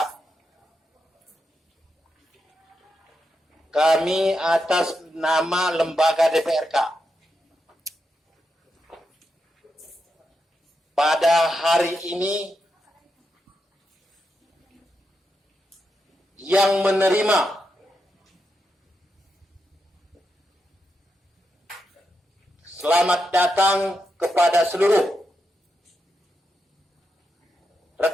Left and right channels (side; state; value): both; normal; correlation 0.85